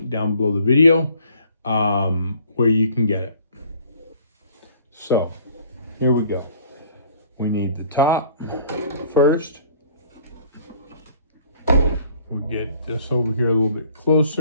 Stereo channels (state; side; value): inverted; both; correlation -0.55